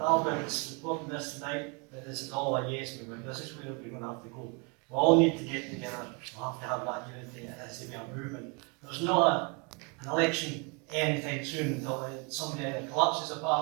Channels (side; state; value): left; quieter; 32.0 dB